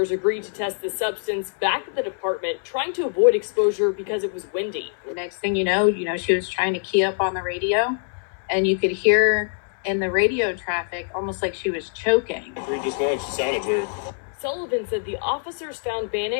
agreed to test the substance back at the department, trying to avoid exposure because it was windy. The next thing you know, she was trying to key up on the radio, and you could hear in the radio traffic almost like she was choking. We just know she sounded weird. Sullivan said the officers found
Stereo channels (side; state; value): right; silent; 63 dB below the other